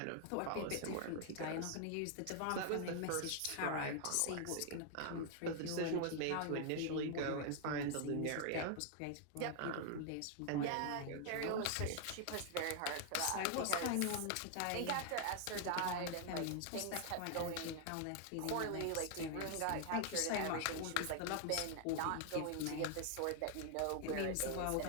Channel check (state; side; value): different; both; correlation 0.00